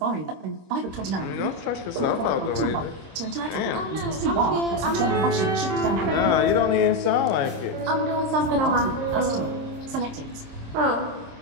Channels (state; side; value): late; left; 26 ms